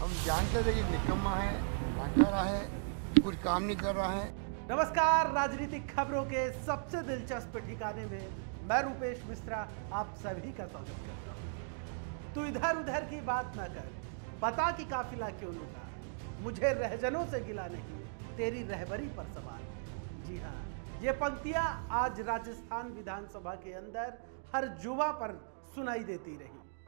जानते थे कि निकम्मा है, नाकारा है, कुछ काम नहीं कर रहा है। नमस्कार, राजनीतिक खबरों के सबसे दिलचस्प ठिकाने में मैं रूपेश मिश्रा आप सभी का स्वागत करता हूं। तू इधर उधर की बात ना कर, बता कि काफिला क्यों लूटा। मुझे रहजनों से गिला नहीं, तेरी रहबरी पर सवाल है। जी हाँ, ये पंक्तियां आज राजस्थान विधानसभा के अंदर हर जुबा पर सुनाई देती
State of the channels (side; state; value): left; silent; digital silence